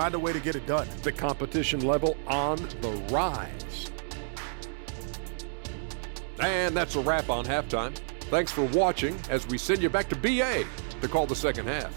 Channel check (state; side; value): silent; left; 58 dB below the other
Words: a way to get it done. The competition level on the rise. And that's a wrap on halftime. Thanks for watching as we send you back to BA to call the second half.